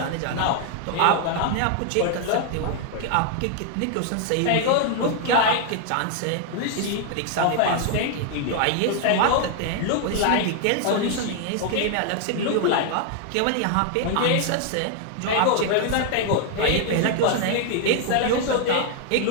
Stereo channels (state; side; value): different; both; correlation 0.00